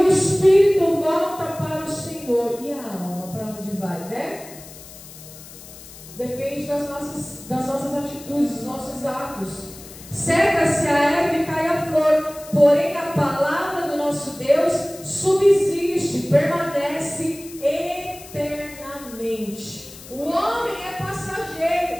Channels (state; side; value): noise; left; hiss, 17 dB below the sound